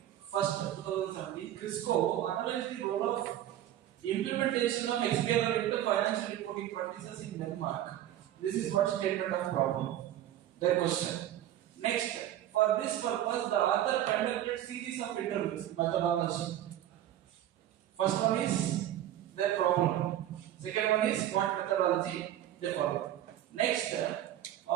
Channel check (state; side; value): quieter; left; 12.4 dB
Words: first 2017. Crisco analyzed the role of implementation of XBRL into financial reporting practices in Denmark. This is what statement of problem. Their question. Next, for this purpose, the author conducted series of interviews. Methodology. First one is their problem. Second one is what methodology they follow. Next,